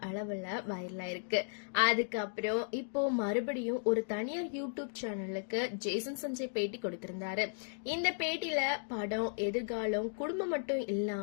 அளவுல வைரலா இருக்கு. அதுக்கப்புறம் இப்போ மறுபடியும் ஒரு தனியார் யூடியூப் சேனலுக்கு ஜேசன் சஞ்சய் பேட்டி கொடுத்திருந்தாரு. இந்த பேட்டியில படம், எதிர்காலம், குடும்பம் மட்டும்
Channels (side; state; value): right; silent; digital silence